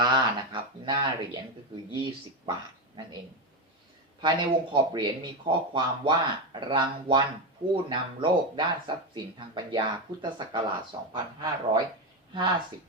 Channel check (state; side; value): normal; both; correlation 0.12